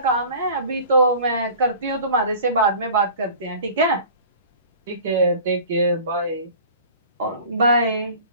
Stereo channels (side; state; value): both; inverted; correlation -0.43